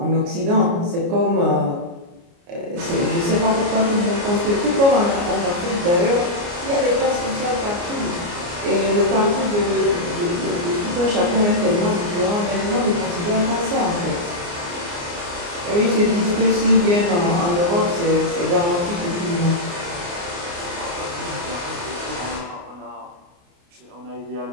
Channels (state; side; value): late; left; 29 ms